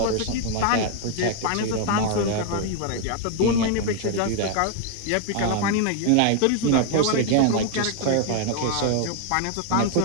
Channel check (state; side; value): different; both; correlation 0.00